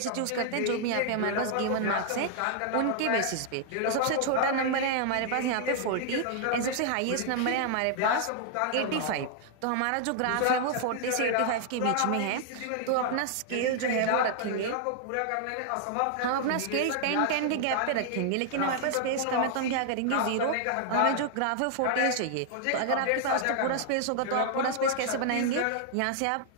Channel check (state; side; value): different; both; correlation 0.00